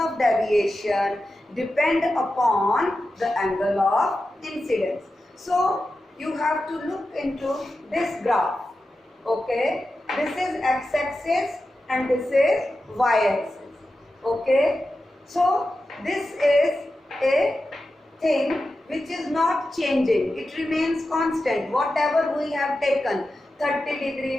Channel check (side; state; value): both; normal; correlation 0.92